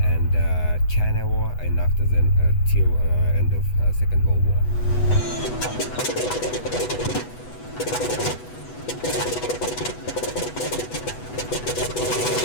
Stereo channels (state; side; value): late; right; 8.1 ms